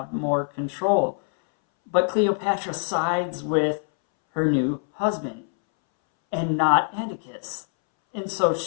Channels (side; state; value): right; silent; 62 dB below the other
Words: more control. But Cleopatra sides with her new husband and not Antiochus. And so